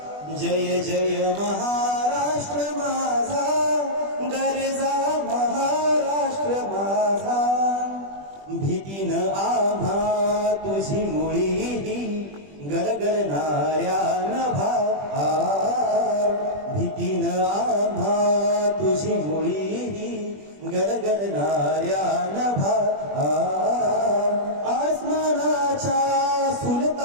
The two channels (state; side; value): late; left; 20 ms